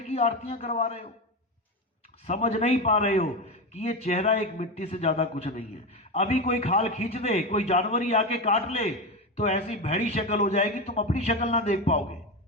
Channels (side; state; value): both; normal; correlation 0.17